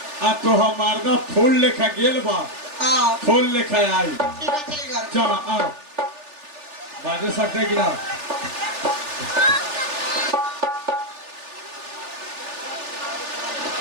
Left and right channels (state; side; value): late; left; 3.4 ms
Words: आ तो हमारा फूल लेखा गेल बा हाँ फूल लेखा आई। ठीक है चल घर चलो आओ बाजे सकते कि ना।